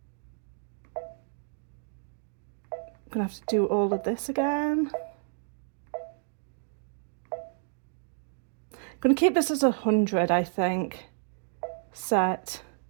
I'm gonna have to do all of this again. I'm gonna keep this as 100, I think. Set,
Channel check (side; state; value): left; silent; 58 dB below the other